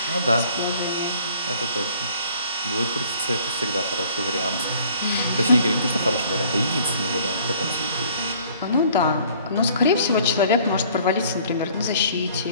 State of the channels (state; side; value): inverted; both; correlation -0.55